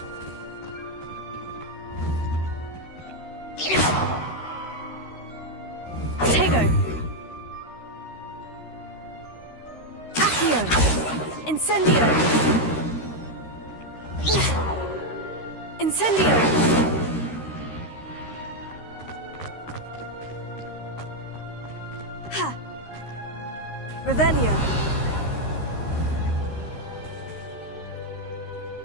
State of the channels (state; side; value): late; right; 13 ms